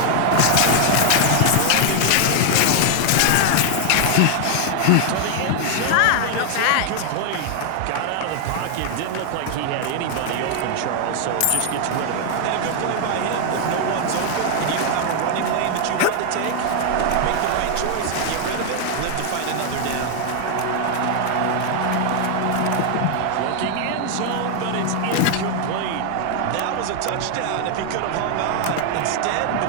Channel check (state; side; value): different; both; correlation 0.00